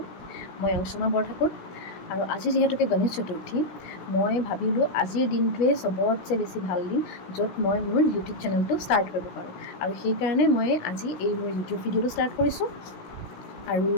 মই অংশুমা বৰঠাকুৰ আৰু আজি যিহেতুকে গণেশ চতুৰ্থী, মই ভাবিলোঁ আজিৰ দিনটোৱে চবতছে বেছি ভাল দিন য'ত মই মোৰ ইউটিউব চেনেলটো ষ্টাৰ্ট কৰিব পাৰোঁ। আৰু সেইকাৰণে মই আজি এই মোৰ ইউটিউব ভিডিঅ'টো ষ্টাৰ্ট কৰিছোঁ। আৰু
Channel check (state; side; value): late; right; 16 ms